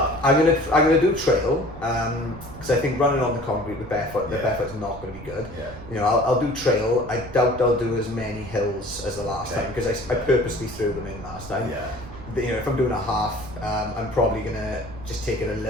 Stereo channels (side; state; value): right; noise; rumble, 15 dB below the sound